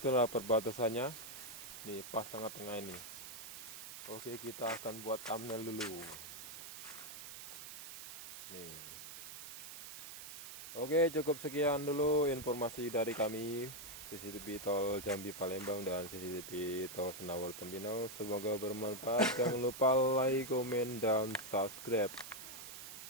perbatasannya. Nih pas tengah-tengah ini. Oke, kita akan buat thumbnail dulu. Nih. Oke, cukup sekian dulu informasi dari kami CCTV Tol Jambi Palembang dan CCTV Tol Senawer Tempino. Semoga bermanfaat. Jangan lupa like, komen, dan subscribe.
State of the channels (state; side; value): noise; right; hiss, 10 dB below the sound